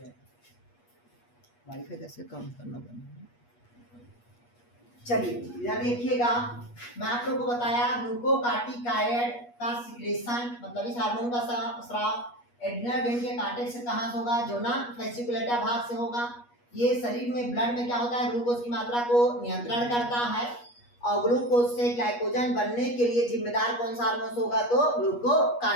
वाईफाई कैसे काम करना बंद। चलिए इधर देखिएगा, मैं आप लोगों को बताया ग्लूकोकार्टिकायड का सिक्रेशन, मतलब इस हार्मोन का स्राव एड्रिनल ग्लैंड के कार्टेक्स से कहां से होगा, जोना फेसिकुलेटा भाग से होगा। ये शरीर में ब्लड में क्या होता है, ग्लूकोज की मात्रा को नियंत्रण करता है, और ग्लूकोज से ग्लाइकोजन बनने के लिए जिम्मेदार कौन सा हार्मोन होगा, तो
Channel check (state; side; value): late; right; 8.3 ms